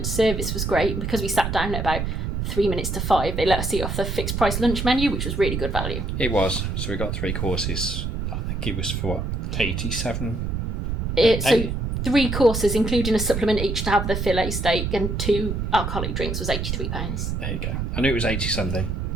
service was great. Because we sat down at about 3 minutes to 5, they let us eat off the fixed price lunch menu, which was really good value. It was. So we got 3 courses. I think it was for what, 87? So 3 courses, including a supplement each to have the fillet steak and 2 alcoholic drinks, was £83. There you go. I knew it was 80 something.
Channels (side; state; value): right; noise; rumble, 2 dB below the sound